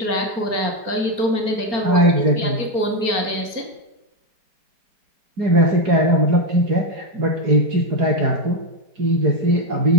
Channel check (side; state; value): left; late; 4.4 ms